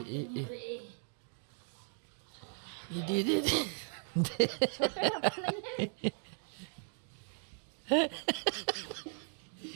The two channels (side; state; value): left; silent; 53 dB below the other